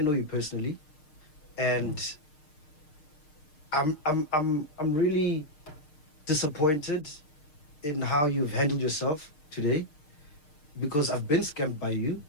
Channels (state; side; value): late; right; 6.6 ms